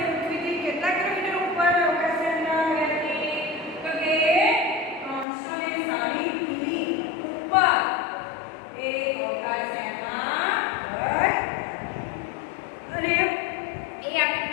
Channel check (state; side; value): drops out; right; at 5.2 s